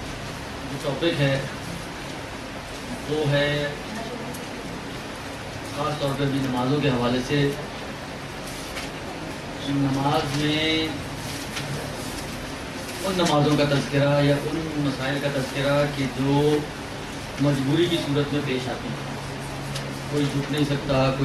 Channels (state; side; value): identical; both; correlation 1.00